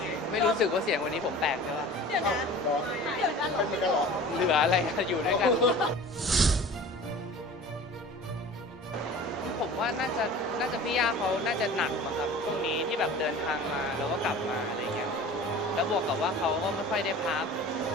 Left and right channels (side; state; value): both; normal; correlation 0.40